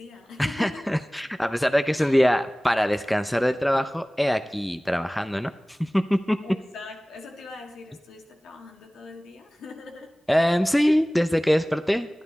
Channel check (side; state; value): both; normal; correlation 0.98